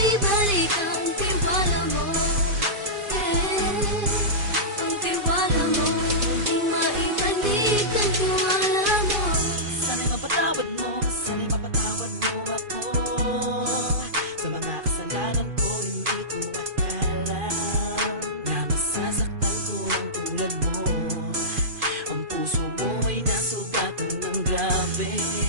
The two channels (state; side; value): late; left; 2.5 ms